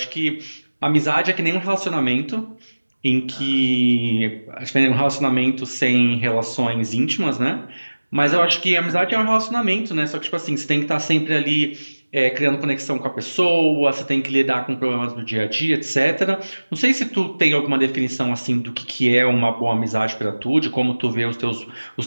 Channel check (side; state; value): both; inverted; correlation -1.00